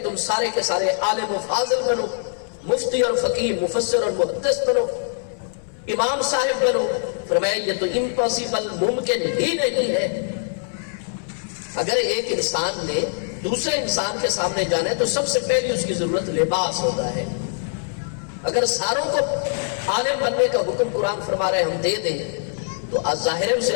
تم سارے کے سارے عالم و فاضل بنو، مفتی اور فقیہ، مفسر اور محدث بنو، امام صاحب بنو، فرمایا یہ تو امپاسبل، ممکن ہی نہیں ہے۔ اگر ایک انسان نے دوسرے انسان کے سامنے جانا ہے تو سب سے پہلی اس کی ضرورت لباس ہوتا ہے۔ اگر ساروں کو عالم بننے کا حکم قرآن فرما رہے ہم دے دیں تو ظاہر ہے اسے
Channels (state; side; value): silent; right; 62 dB below the other